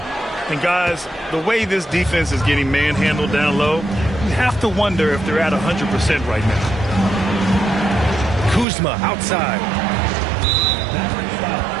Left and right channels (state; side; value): drops out; left; at 8.7 s